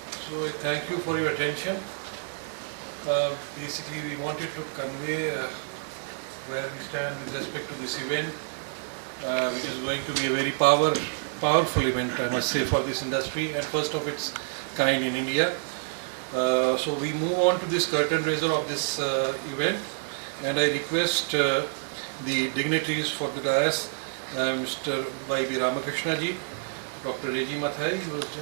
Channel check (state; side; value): silent; left; 59 dB below the other